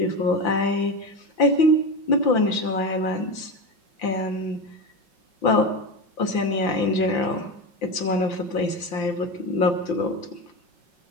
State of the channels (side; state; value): right; late; 5.8 ms